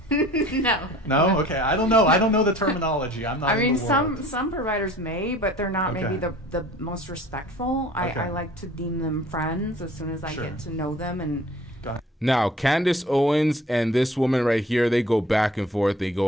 No. No? Okay. I don't know. I don't know the terminology. I'm not. I mean, in the world. some providers may, but they're not maybe Okay. the most respectful. Okay. I like to deem them friends as soon as I Sure. get to know them and. Now, Candace Owens and this woman right here, they go back and forth. They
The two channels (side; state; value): both; normal; correlation 0.48